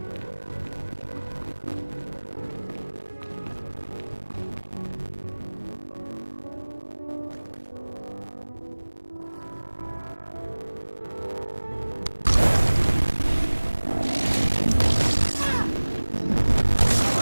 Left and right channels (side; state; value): both; inverted; correlation -1.00